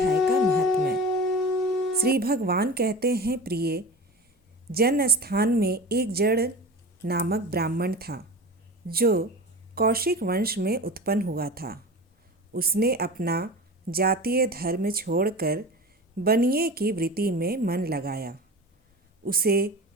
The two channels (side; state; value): both; normal; correlation 0.32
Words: का महात्म्य। श्री भगवान कहते हैं, प्रिय जन स्थान में एक जड़ नामक ब्राह्मण था जो कौशिक वंश में उत्पन्न हुआ था। उसने अपना जातीय धर्म छोड़कर बनिए की वृत्ति में मन लगाया। उसे